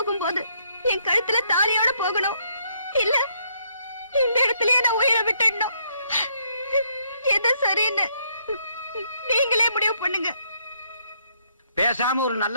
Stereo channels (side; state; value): both; inverted; correlation -0.71